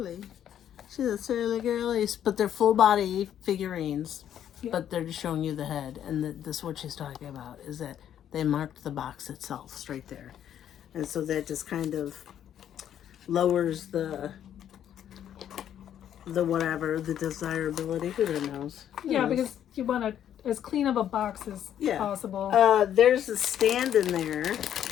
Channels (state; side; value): quieter; right; 10.2 dB